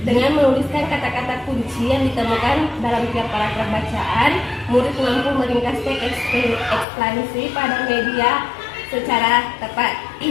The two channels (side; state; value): right; drops out; at 6.9 s